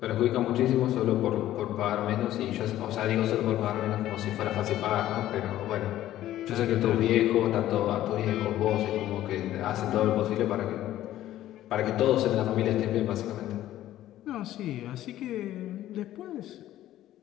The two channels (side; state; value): right; quieter; 13.5 dB